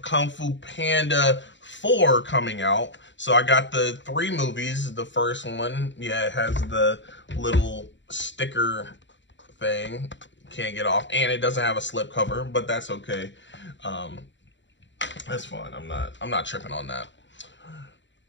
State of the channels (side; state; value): right; late; 0.53 ms